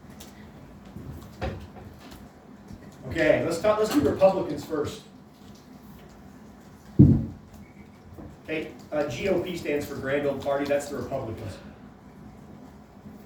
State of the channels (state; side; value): identical; both; correlation 1.00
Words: Okay, let's do Republicans first. Okay, GOP stands for Grand Old Party. That's the Republicans.